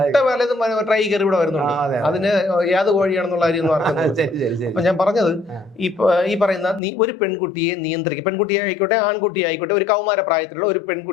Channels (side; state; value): right; drops out; at 6.8 s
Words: പലതും ട്രൈ കയറി ഇവിടെ വരുന്നുണ്ട്. അതിന് ഏത് കോഴിയാണെന്നുള്ള കാര്യം അറിയുന്നത്. അപ്പൊ ഞാൻ പറഞ്ഞത് ഈ പറയുന്ന ഒരു പെൺകുട്ടിയെ നിയന്ത്രിക്കുക, പെൺകുട്ടിയെ ആയിക്കോട്ടെ ആൺകുട്ടിയെ ആയിക്കോട്ടെ, ഒരു കൗമാര പ്രായത്തിലുള്ള ഒരു